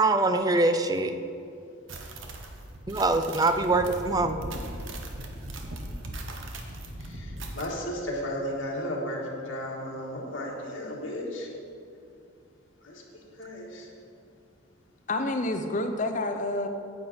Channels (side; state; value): both; normal; correlation 0.30